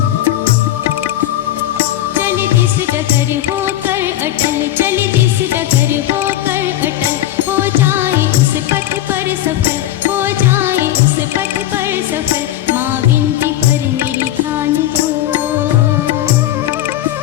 डगर होकर अटल, चले जिस डगर होकर अटल, हो जाए उस पथ पर सफल, हो जाए उस पथ पर सफल। माँ विनती पर मेरी ध्यान दो,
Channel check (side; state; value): right; quieter; 13.3 dB